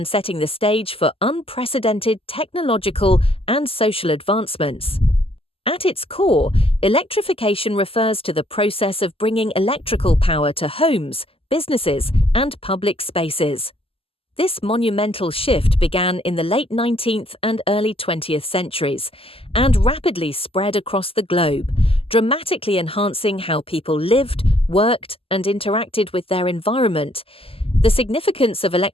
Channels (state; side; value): late; right; 0.27 ms